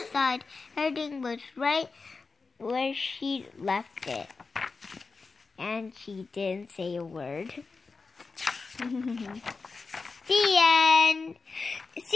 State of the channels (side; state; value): right; quieter; 4.3 dB